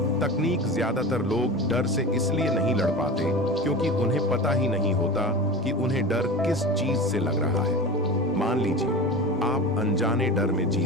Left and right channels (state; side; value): normal; both; correlation 0.30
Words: तकनीक ज्यादातर लोग डर से इसलिए नहीं लड़ पाते क्योंकि उन्हें पता ही नहीं होता कि उन्हें डर किस चीज से लग रहा है। मान लीजिए आप अनजाने डर में जी